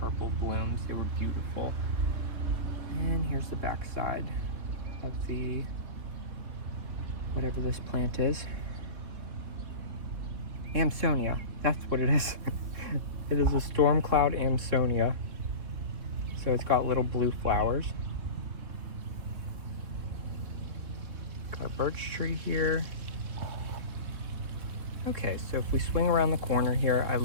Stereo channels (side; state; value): left; late; 3.6 ms